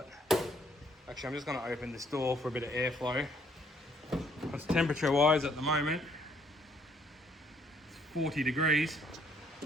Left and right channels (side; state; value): both; normal; correlation 0.66